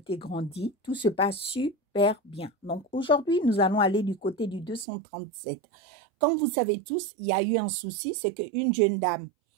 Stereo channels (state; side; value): drops out; left; at 4.9 s